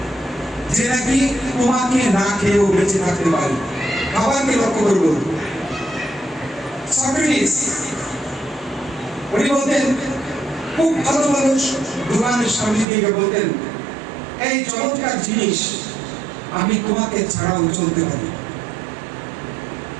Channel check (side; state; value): left; drops out; at 12.9 s